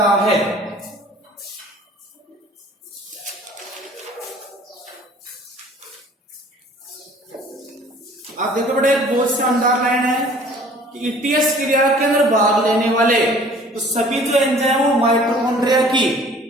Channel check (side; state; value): both; normal; correlation 0.51